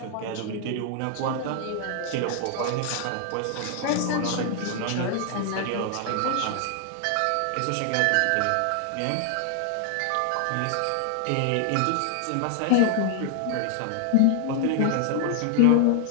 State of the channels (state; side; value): different; both; correlation 0.00